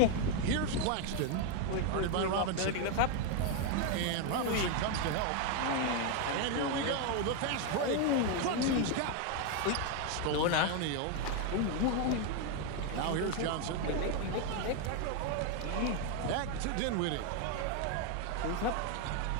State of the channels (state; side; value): different; both; correlation 0.01